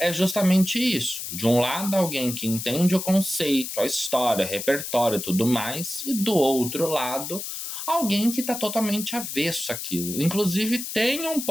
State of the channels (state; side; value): noise; left; hiss, 6 dB below the sound